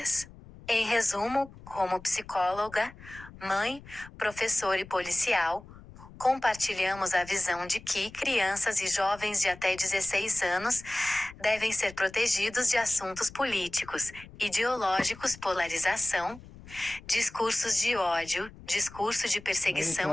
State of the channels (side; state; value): left; noise; rumble, 19 dB below the sound